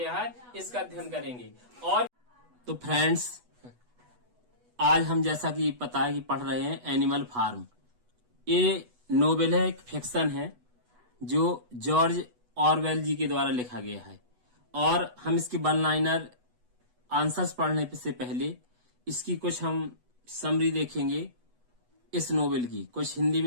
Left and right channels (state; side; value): late; left; 8.1 ms